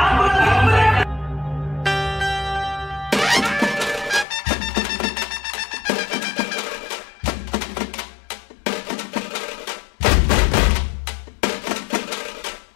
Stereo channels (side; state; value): right; drops out; at 4.2 s